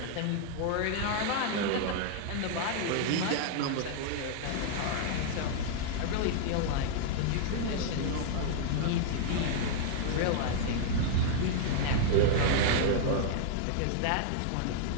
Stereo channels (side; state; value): both; different; correlation -0.01